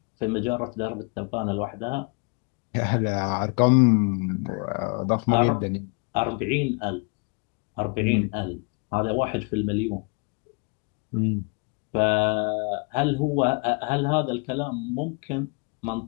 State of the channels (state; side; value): quieter; right; 32.5 dB